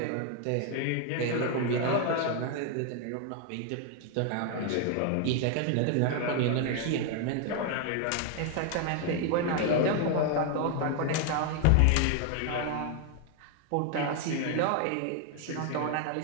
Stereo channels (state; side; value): different; both; correlation 0.00